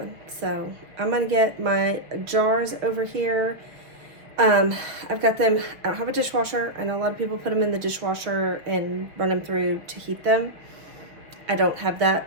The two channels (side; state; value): left; late; 6.1 ms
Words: So I'm going to get my jars over here. I've got them, I don't have a dishwasher. I know a lot of people put them in the dishwasher and run them through to heat them. I don't have that,